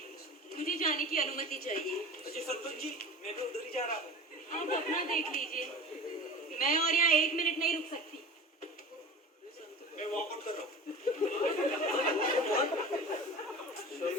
मुझे जाने की अनुमति चाहिए। अच्छा सरपंच जी, मैं भी उधर ही जा रहा हूँ। आप अपना देख लीजिए, मैं और यहाँ 1 मिनट नहीं रुक सकती। मैं वॉकआउट कर रहा हूँ।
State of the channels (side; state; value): both; normal; correlation 0.36